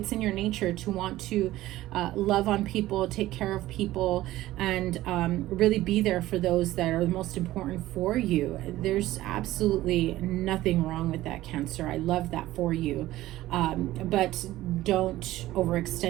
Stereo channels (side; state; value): left; quieter; 15.9 dB